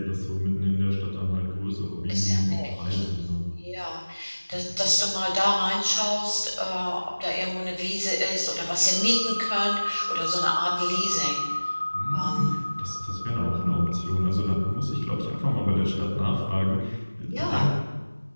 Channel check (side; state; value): both; inverted; correlation -1.00